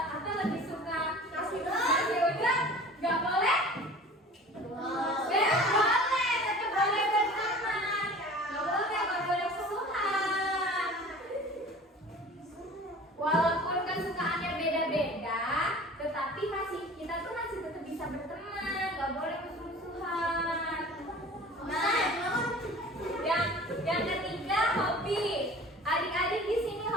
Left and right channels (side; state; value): both; normal; correlation 0.42